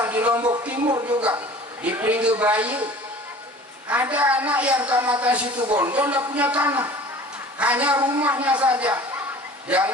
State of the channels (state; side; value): normal; both; correlation 0.45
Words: di Lombok Timur juga, di Pringge Bayu, ada anak yang Kecamatan Situbondo tidak punya tanah, hanya rumahnya saja.